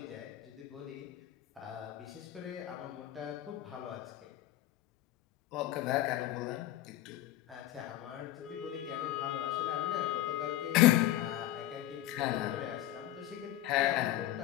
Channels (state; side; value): quieter; right; 14.1 dB